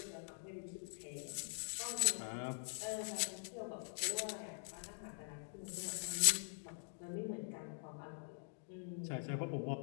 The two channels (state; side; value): silent; right; digital silence